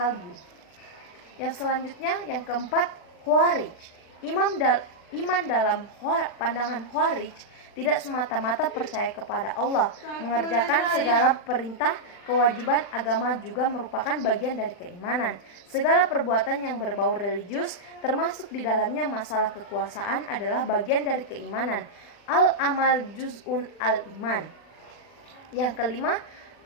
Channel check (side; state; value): right; late; 40 ms